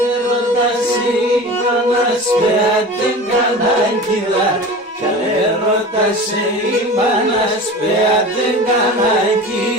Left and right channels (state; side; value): normal; both; correlation 0.34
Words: ρωτάσει πανασπέα την κανάκιδα. Κι αν ρωτάσει πανασπέα την